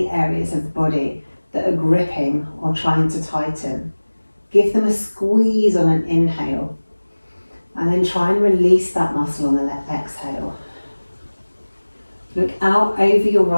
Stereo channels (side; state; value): both; inverted; correlation -1.00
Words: areas of the body that are gripping or trying to tighten, give them a squeeze on an inhale, and then try and release that muscle on the exhale. Look out over your